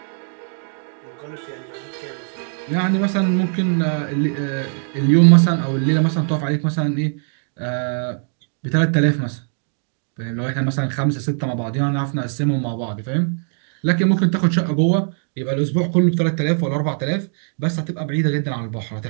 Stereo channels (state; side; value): silent; left; 55 dB below the other